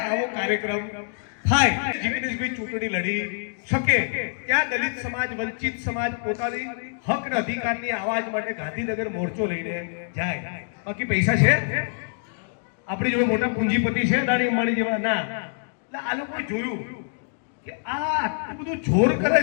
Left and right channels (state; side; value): silent; right; digital silence